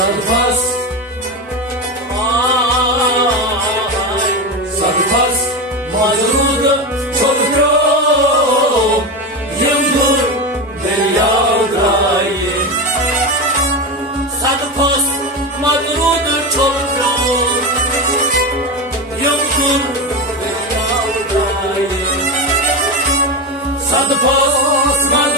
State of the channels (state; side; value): normal; both; correlation 0.18